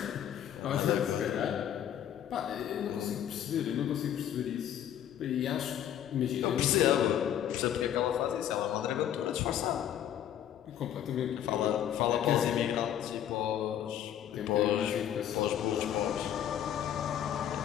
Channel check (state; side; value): quieter; right; 10.4 dB